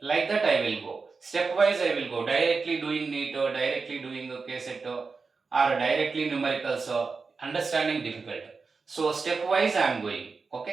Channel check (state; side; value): quieter; left; 4.6 dB